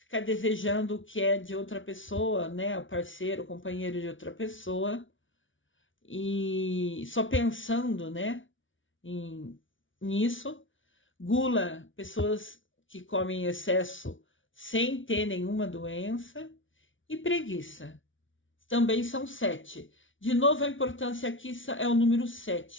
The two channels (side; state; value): right; late; 0.56 ms